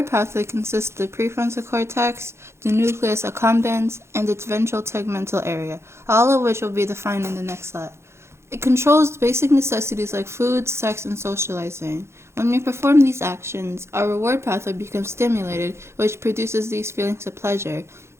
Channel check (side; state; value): left; late; 0.13 ms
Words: pathway consists of the prefrontal cortex, the nucleus accumbens, and its ventral tegmental area, all of which will be defined in the next slide. It controls basic necessities like food, sex, and socializing. When we perform these actions, our reward pathway becomes stimulated, which produces these feelings of pleasure.